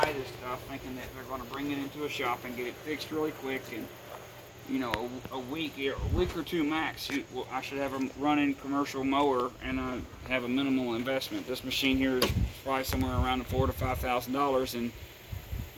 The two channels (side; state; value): both; identical; correlation 1.00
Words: this stuff thinking that they're going to bring it into a shop and get it fixed really quick, and you know, a week or two max, I should have a running commercial mower and have a minimal investment. This machine here is probably somewhere around $4,000 to $5,000 and